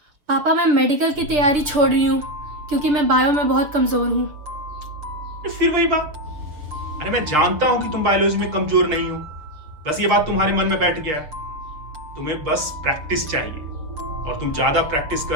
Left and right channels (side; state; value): left; late; 6.6 ms